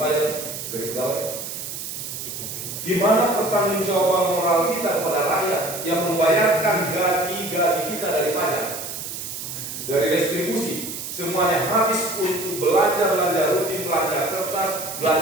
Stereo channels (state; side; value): noise; right; hiss, 7 dB below the sound